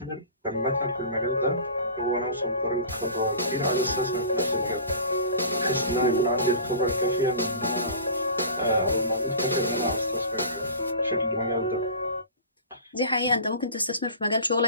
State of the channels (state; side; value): inverted; both; correlation -0.39